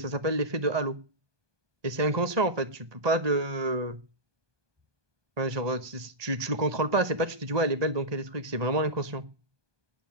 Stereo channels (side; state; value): left; late; 1.2 ms